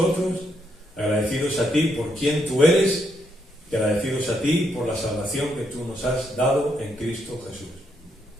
agradecidos a ti por quien tú eres y agradecidos a ti por la salvación que tú nos has dado en Cristo Jesús.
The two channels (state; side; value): normal; both; correlation 0.77